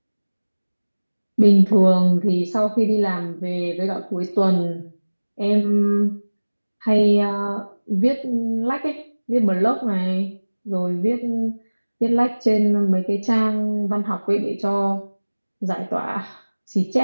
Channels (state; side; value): inverted; both; correlation -1.00